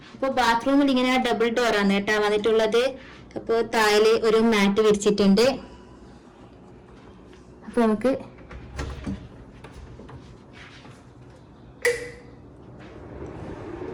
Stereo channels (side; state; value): both; identical; correlation 1.00